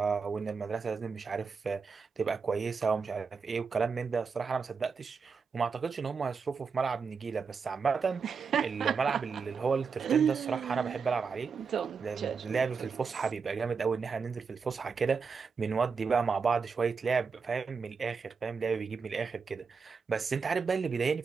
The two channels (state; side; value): quieter; left; 5.4 dB